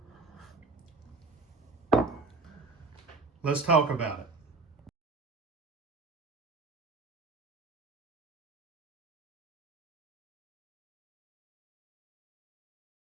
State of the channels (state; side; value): quieter; left; 3.6 dB